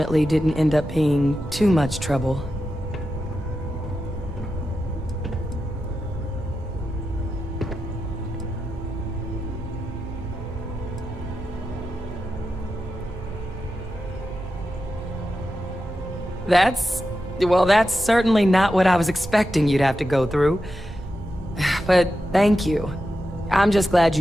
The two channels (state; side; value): normal; both; correlation 0.90